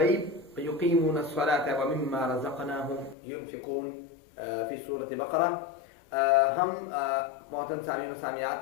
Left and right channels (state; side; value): drops out; right; at 3.2 s